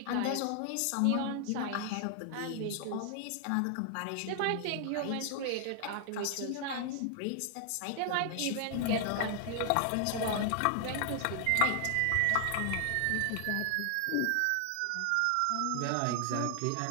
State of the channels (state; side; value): different; both; correlation 0.00